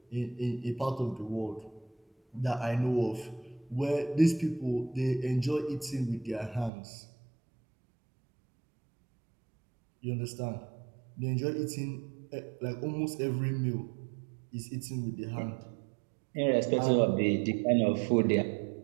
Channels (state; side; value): drops out; left; at 6.7 s